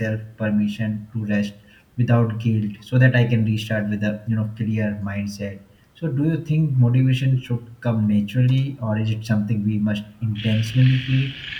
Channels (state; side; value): identical; both; correlation 1.00